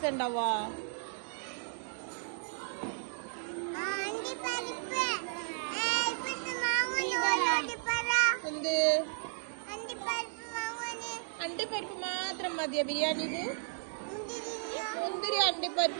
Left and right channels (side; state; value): left; silent; digital silence